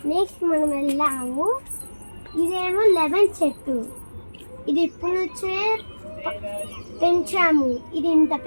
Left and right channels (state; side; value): inverted; both; correlation -1.00